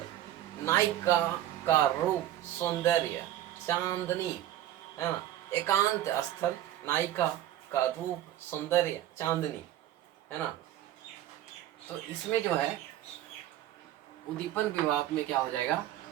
नायिका का रूप सौंदर्य चांदनी है ना, एकांत स्थल, नायिका का रूप सौंदर्य चांदनी है ना। तो इसमें जो है उद्दीपन विभाव में क्या हो जाएगा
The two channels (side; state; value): left; quieter; 13.0 dB